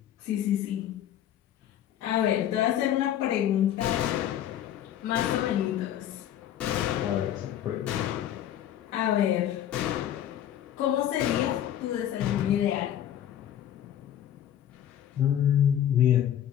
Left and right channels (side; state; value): right; quieter; 11.0 dB